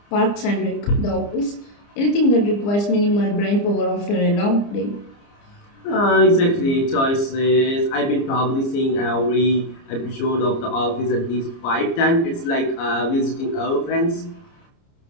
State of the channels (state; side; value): late; right; 30 ms